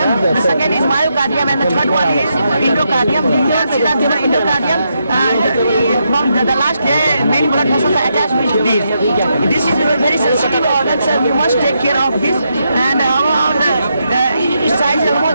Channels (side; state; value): both; inverted; correlation -0.81